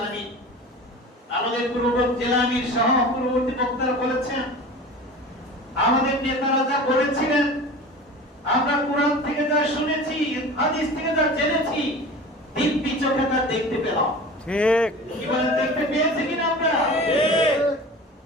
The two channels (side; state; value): both; normal; correlation 0.36